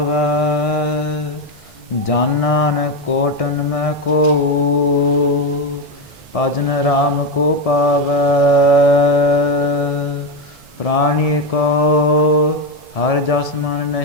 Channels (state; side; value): normal; both; correlation 0.09